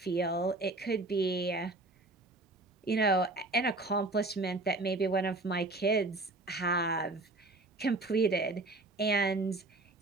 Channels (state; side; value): quieter; left; 3.0 dB